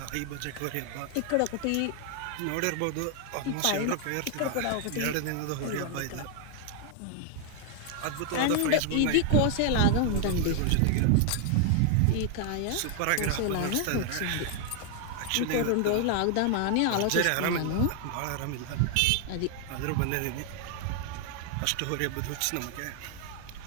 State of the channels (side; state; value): both; different; correlation 0.00